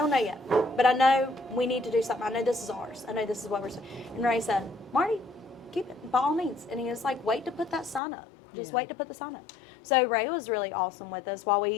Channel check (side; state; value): right; drops out; at 8.0 s